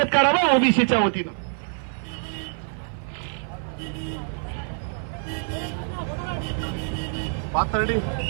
करावं ओबीसीच्या वतीनं. पाथर्डी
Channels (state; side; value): silent; left; 55 dB below the other